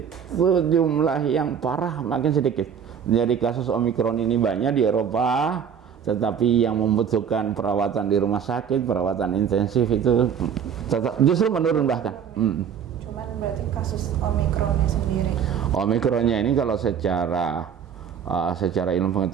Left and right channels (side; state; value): left; quieter; 7.9 dB